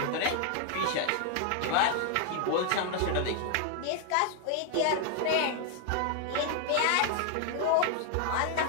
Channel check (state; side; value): different; both; correlation 0.00